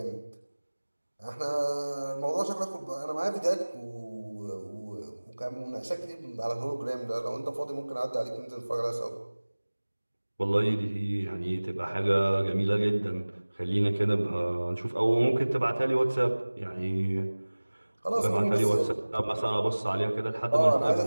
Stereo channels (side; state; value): both; inverted; correlation -1.00